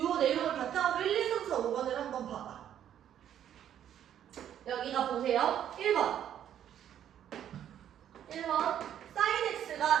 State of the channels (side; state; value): left; quieter; 10.2 dB